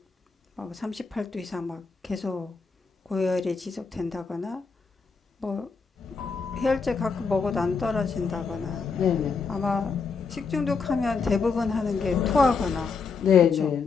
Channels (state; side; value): quieter; right; 5.0 dB